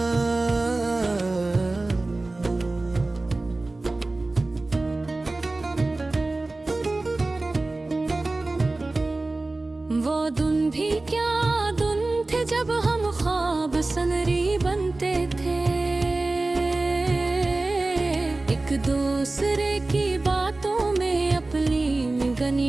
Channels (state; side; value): quieter; left; 3.1 dB